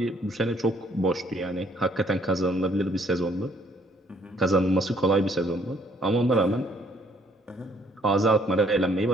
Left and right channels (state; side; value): normal; both; correlation 0.65